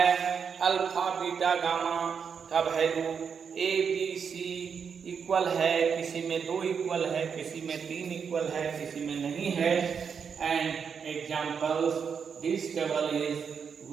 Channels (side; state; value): left; quieter; 6.6 dB